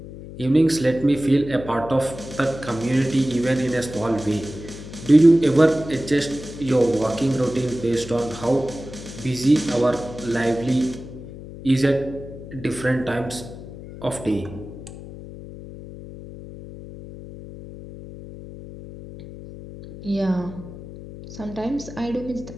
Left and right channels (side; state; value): left; noise; hum, 13 dB below the sound